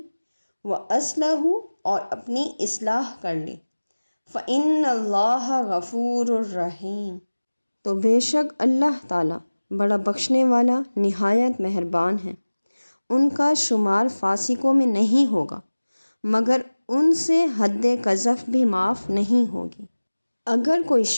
وَأَصْلَحُوا، اور اپنی اصلاح کر لی، فَإِنَّ اللَّهَ غَفُورٌ رَحِيمٌ، تو بے شک اللہ تعالیٰ بڑا بخشنے والا نہایت مہربان ہے۔ ان کا شمار فاسقوں میں نہیں ہوگا، مگر ان سے حد قذف بھی معاف نہیں ہوگی۔ اگر کوئی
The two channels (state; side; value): inverted; both; correlation -1.00